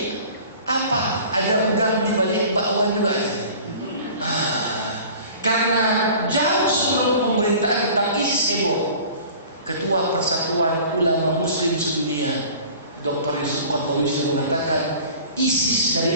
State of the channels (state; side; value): inverted; both; correlation -0.44